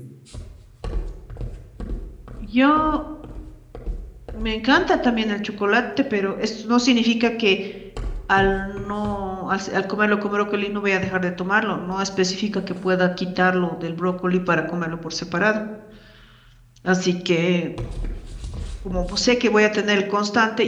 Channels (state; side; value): identical; both; correlation 1.00